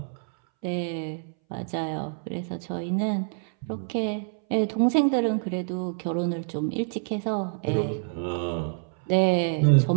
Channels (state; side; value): silent; left; 60 dB below the other